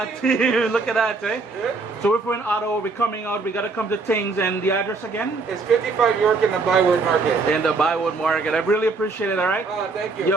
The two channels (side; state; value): left; quieter; 4.0 dB